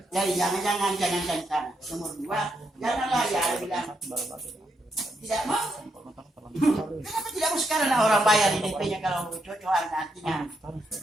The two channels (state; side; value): normal; both; correlation 0.79